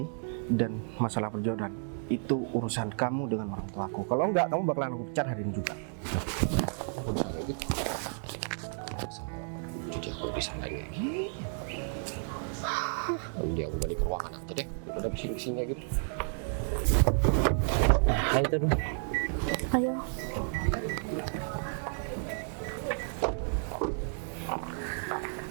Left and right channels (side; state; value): left; silent; 56 dB below the other